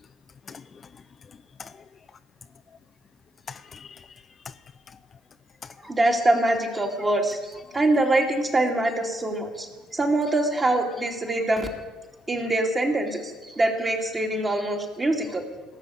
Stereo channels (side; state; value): both; normal; correlation 0.80